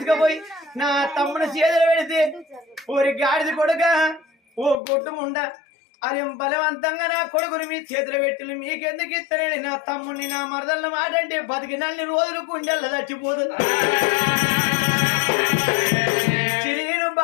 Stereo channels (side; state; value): right; drops out; at 4.8 s